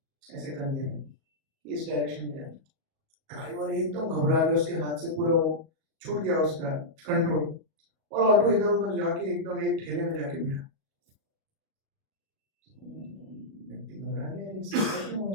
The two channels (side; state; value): left; late; 37 ms